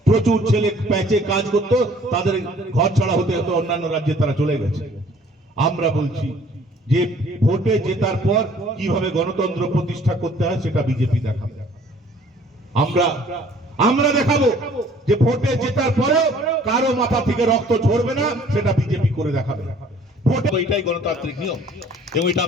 প্রচুর ছেলে প্যাচে কাজ করতো, তাদের ঘর ছাড়া হতে হতো, অন্যান্য রাজ্যে তারা চলে গেছে। আমরা বলছি যে ভোটে জেতার পর কিভাবে গণতন্ত্র প্রতিষ্ঠা করতে হয় সেটা বিজেপি দেখাবে। আমরা দেখাবো যে ভোটে জেতার পরেও কারো মাথা থেকে রক্ত ঝরবে না, সেটা বিজেপি করে দেখাবে। ভোটে এটাই গণতান্ত্রিক নিয়ম এবং এটা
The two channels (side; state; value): both; normal; correlation 0.55